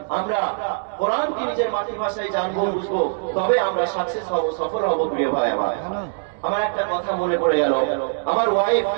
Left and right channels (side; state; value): left; silent; digital silence